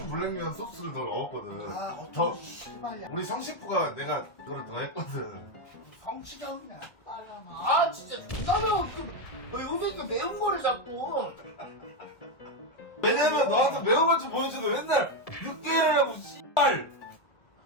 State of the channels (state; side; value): late; right; 1.7 ms